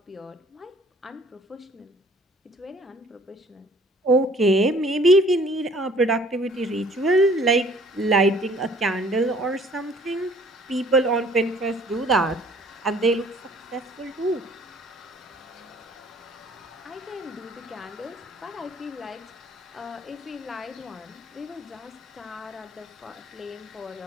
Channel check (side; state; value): both; normal; correlation 0.56